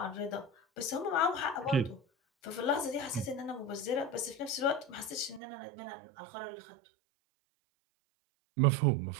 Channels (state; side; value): drops out; left; at 5.4 s